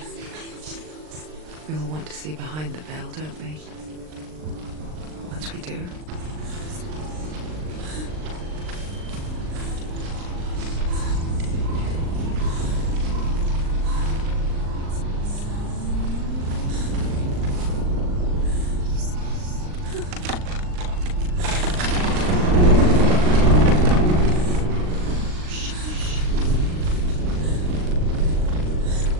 We all want to see behind the veil, don't we? Once we do.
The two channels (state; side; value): late; left; 39 ms